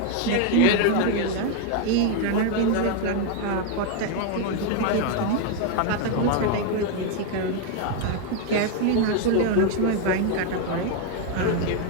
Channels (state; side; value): different; both; correlation 0.01